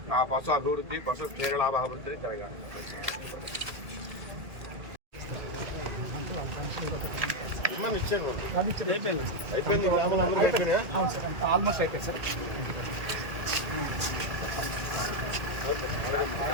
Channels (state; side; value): late; left; 1.9 ms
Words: ఆ పశు అభివృద్ధి పశు క్షీరలాభ అభివృద్ధి జరగాలి. అయిపోయింది ఆల్మోస్ట్ అయిపోయింది సార్.